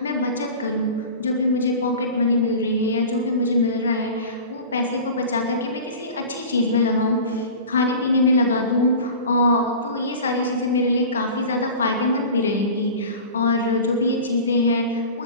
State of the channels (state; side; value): inverted; both; correlation -0.36